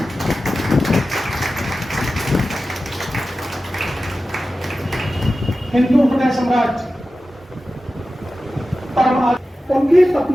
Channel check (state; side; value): normal; both; correlation 0.94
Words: हिंदू हृदय सम्राट उनकी